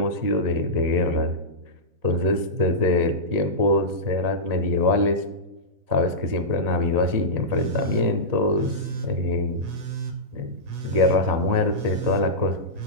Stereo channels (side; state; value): left; late; 4.0 ms